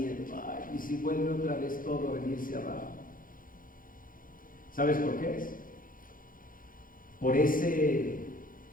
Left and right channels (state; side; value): late; right; 0.40 ms